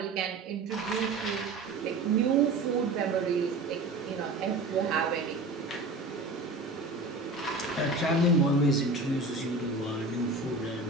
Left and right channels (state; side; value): quieter; left; 3.1 dB